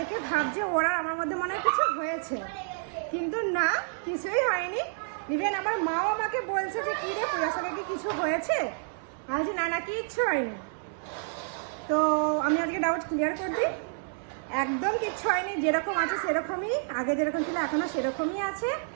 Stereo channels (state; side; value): silent; left; digital silence